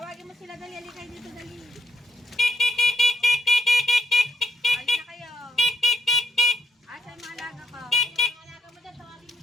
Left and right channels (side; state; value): both; normal; correlation 0.77